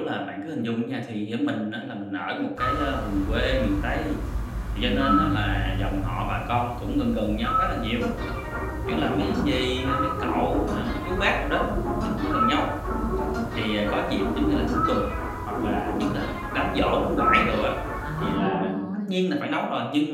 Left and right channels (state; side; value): identical; both; correlation 1.00